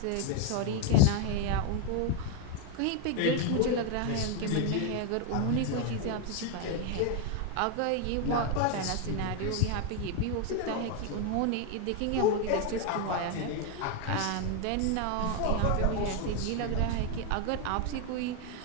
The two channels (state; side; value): different; both; correlation 0.01